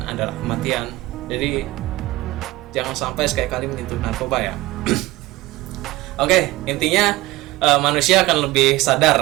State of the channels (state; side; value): quieter; left; 18.8 dB